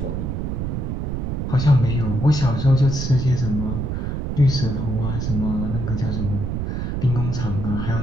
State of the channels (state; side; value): noise; right; rumble, 2 dB below the sound